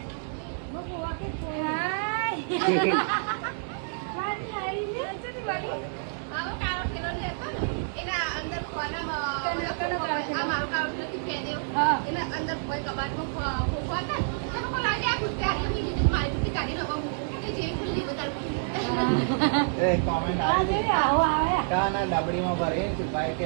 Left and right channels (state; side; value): silent; left; digital silence